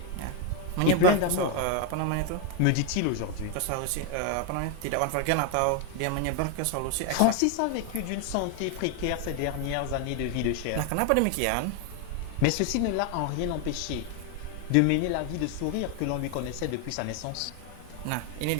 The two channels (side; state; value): both; different; correlation 0.01